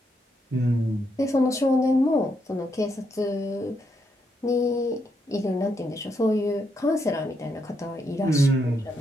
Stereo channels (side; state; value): both; normal; correlation 0.79